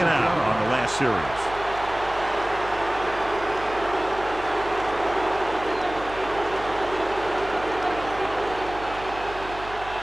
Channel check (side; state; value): right; noise; hum, 15 dB below the sound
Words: on the last series.